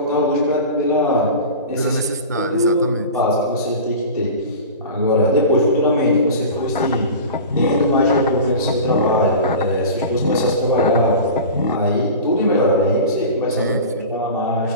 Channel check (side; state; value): both; inverted; correlation -0.33